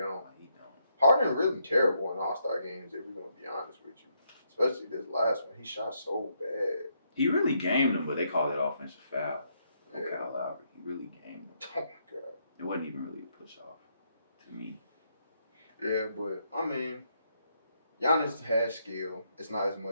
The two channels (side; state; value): both; inverted; correlation -0.76